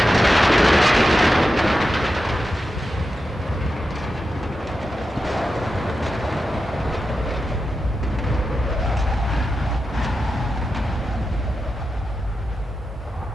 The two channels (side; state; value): both; normal; correlation 0.90